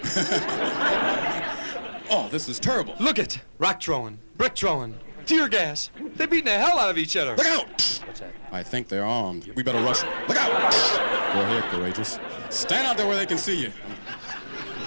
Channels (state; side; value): inverted; both; correlation -1.00